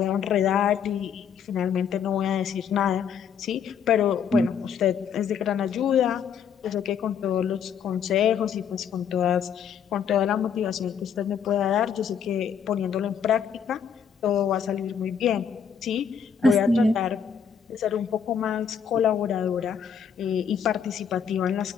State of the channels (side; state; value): right; quieter; 7.4 dB